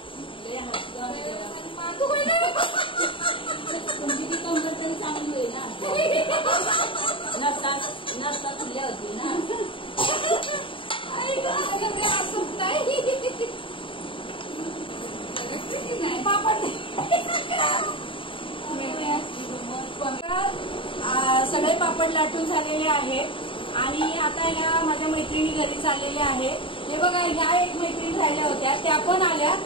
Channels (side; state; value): right; late; 0.25 ms